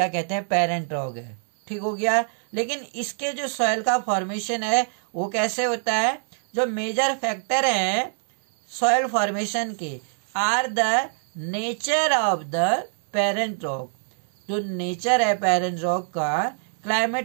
कहते हैं, पेरेंट रॉक है। ठीक हो गया। लेकिन इसके जो सॉइल का फॉर्मेशन है, वो कैसे होता है? जो मेजर फैक्टर है सॉइल फॉर्मेशन के are the nature of the parent rock. जो नेचर है पेरेंट रॉक का,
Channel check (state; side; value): silent; left; digital silence